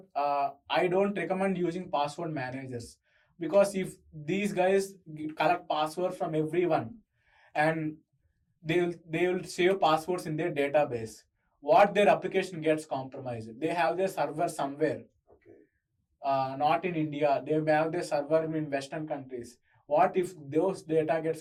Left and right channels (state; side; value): identical; both; correlation 1.00